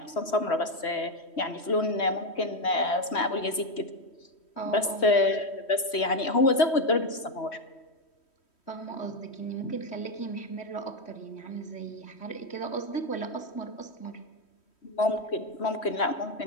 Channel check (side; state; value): right; late; 3.1 ms